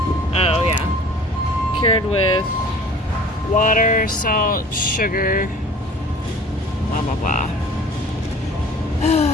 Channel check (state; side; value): normal; both; correlation 0.46